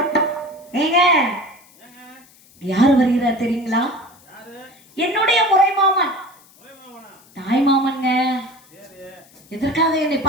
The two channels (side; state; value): left; noise; hiss, 27 dB below the sound